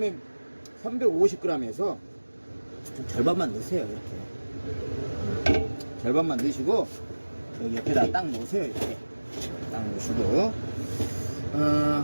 350g에서 절반만 넣으세요. 이렇게 절반만 넣으시고 여기 옆에다 딱 놓으세요. 이렇게 딱 놓으시고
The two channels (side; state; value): both; inverted; correlation -1.00